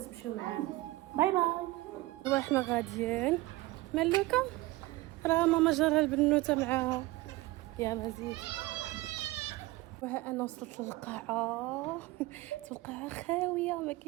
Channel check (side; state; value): left; quieter; 19.5 dB